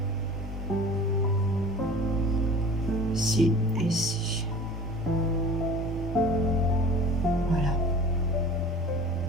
Ici et ici. Voilà.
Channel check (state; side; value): normal; both; correlation 0.42